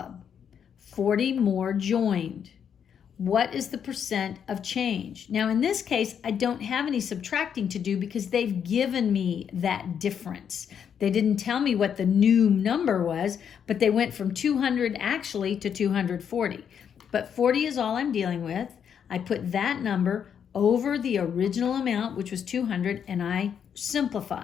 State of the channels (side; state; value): right; quieter; 8.0 dB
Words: 40 more joined. What is the percent of change? Now, in this case, I don't have any subtracting to do because they've given me that difference. They didn't tell me what the new number was, but they went from 200 actually to 240. But 40 is all I'm dealing with. I put that number over the original amount, which was 200, and I